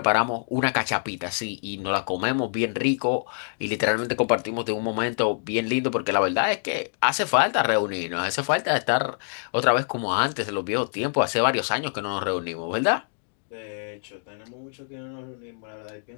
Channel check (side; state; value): right; silent; digital silence